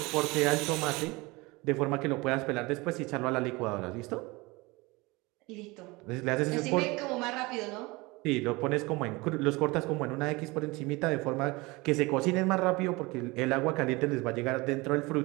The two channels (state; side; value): quieter; left; 23.6 dB